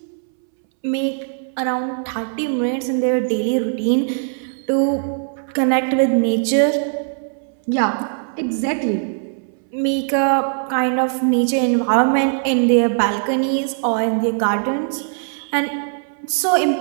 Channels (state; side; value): silent; left; 66 dB below the other